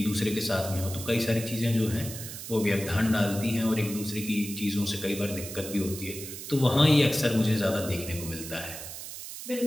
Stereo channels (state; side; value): noise; right; hiss, 10 dB below the sound